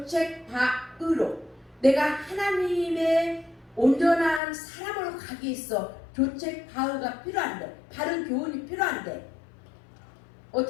내가 하나님의 온전한 사람으로 가기 위해서 교책바으가 필요한데, 바른 교훈이 필요한데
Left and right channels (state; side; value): drops out; right; at 4.4 s